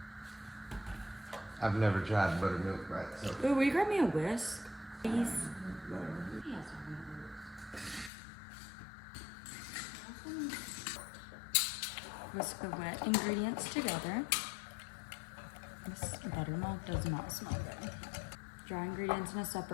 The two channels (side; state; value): right; drops out; at 8.1 s